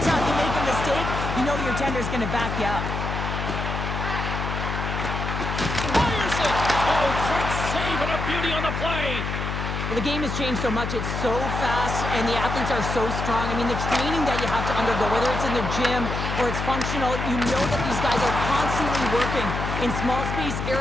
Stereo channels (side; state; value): left; noise; hum, 3 dB below the sound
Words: time you make a mistake, you know your tender's going to back you up. Fires it! Oh, great save and a beauty on the play. Well, the game has changed so much. It's so fast, and the athletes are so strong. I mean, the training that you have to undergo, whether it's in the gym or it's functional, you know that these guys are constantly working in small space